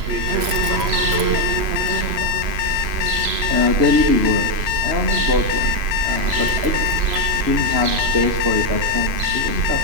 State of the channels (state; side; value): late; left; 3.0 ms